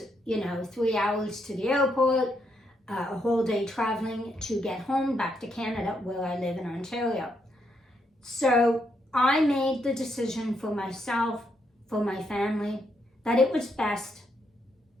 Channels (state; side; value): normal; both; correlation 0.77